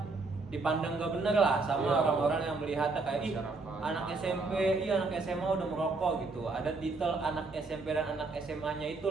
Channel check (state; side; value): quieter; left; 3.7 dB